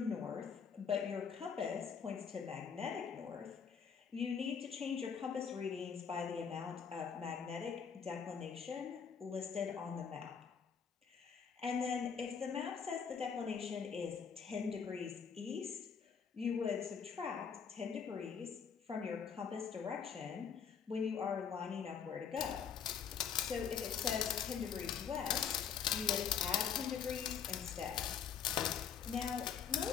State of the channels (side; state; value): right; quieter; 7.0 dB